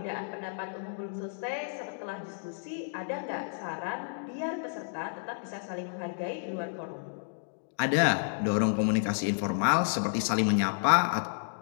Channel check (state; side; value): silent; right; digital silence